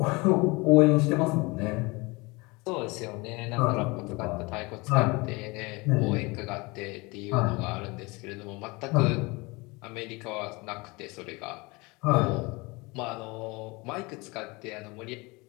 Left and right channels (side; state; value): right; quieter; 25.4 dB